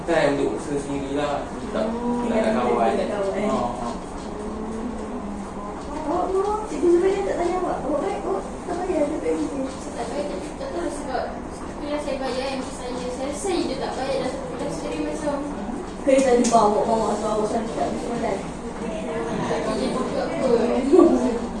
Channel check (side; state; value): both; identical; correlation 1.00